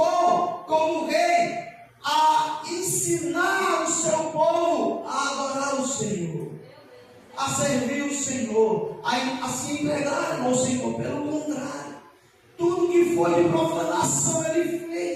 como rei a ensinar o seu povo a adorar o Senhor, a servir o Senhor, a se entregarem ao Senhor. Pelo contrário, tudo que foi de profanação ele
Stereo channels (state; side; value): identical; both; correlation 1.00